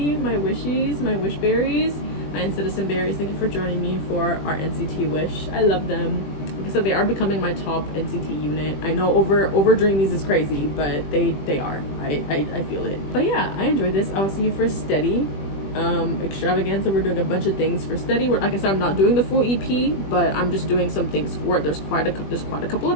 My wishies, my wish berries, my citizen berries. Thank you for joining me for our NCT wish. I love them. Like I said, they are becoming my top NCT unit. I know over Dreamies is crazy, but they are. I feel it. But yeah, I enjoyed this. I will see you for Steady. Extravaganza, we're doing a bunch of things for Steady. Like I said, I'm not doing the full EP, but I'm just doing some things for it. There's quite a couple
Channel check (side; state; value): right; late; 20 ms